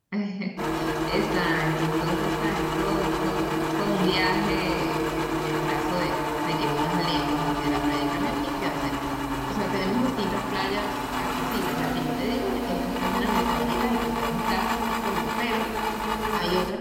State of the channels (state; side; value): identical; both; correlation 1.00